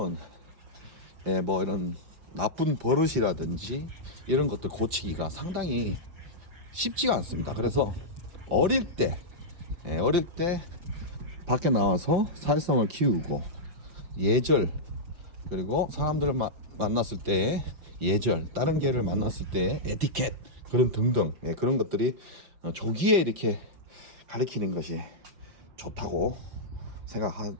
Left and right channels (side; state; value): left; late; 5.4 ms